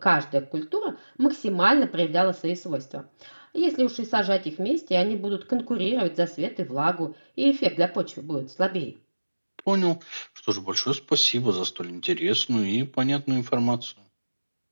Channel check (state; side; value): inverted; both; correlation -1.00